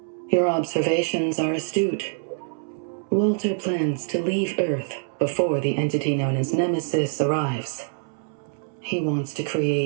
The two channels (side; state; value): left; silent; 62 dB below the other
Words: Your observations are astute. Walter plans to leave Earth before the entity known as Nemesis arrives. He wants to